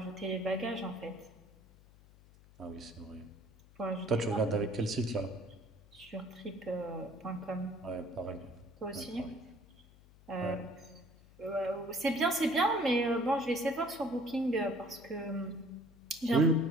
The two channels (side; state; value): left; noise; hum, 24 dB below the sound